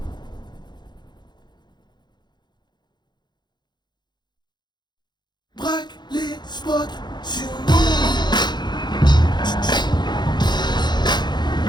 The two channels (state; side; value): late; right; 0.21 ms